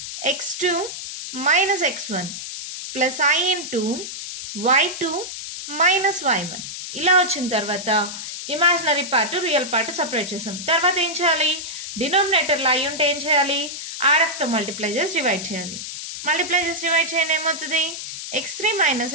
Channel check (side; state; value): left; noise; hiss, 8 dB below the sound